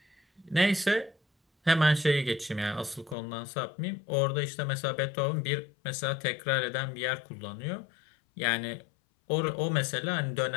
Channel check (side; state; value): right; drops out; at 3.2 s